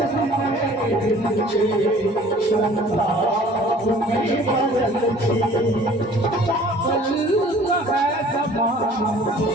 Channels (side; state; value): both; normal; correlation 0.50